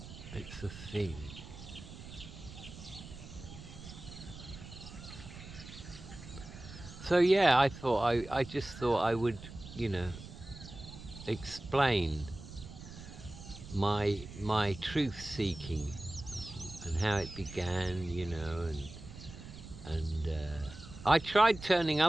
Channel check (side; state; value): right; noise; rumble, 14 dB below the sound